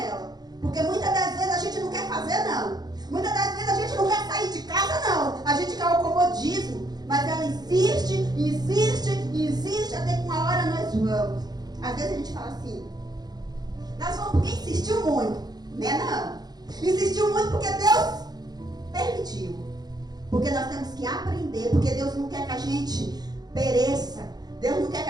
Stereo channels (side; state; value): left; late; 0.19 ms